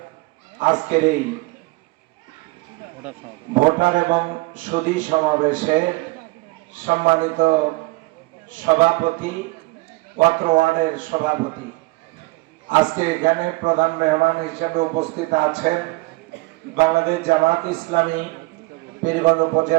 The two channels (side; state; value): left; quieter; 23.3 dB